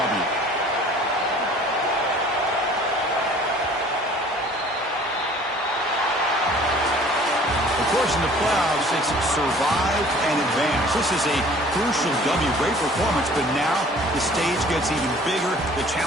Of course, in the playoffs, it's survive and advance. This is a crucial W. Great performance, but now the stage gets even bigger. The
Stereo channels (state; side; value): normal; both; correlation 0.51